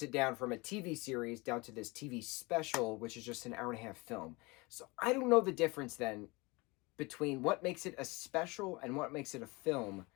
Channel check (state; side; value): quieter; right; 25.3 dB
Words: it down from a TV series down to this TV special, which is just an hour and a half film. So I don't know the difference then between what makes it a special and what makes it a film.